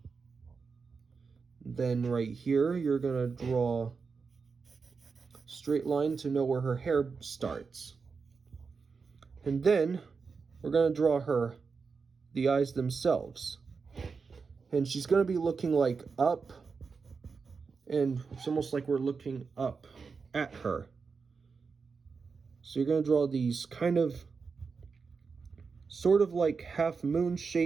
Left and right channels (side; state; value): left; quieter; 5.1 dB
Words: Then right here, you're going to draw a straight line to know where her hair starts. And then we're going to draw the eyes themselves. And she's going to be looking like up, and it's almost like we're looking up at her. So you're going to draw these kind of sort of like half moon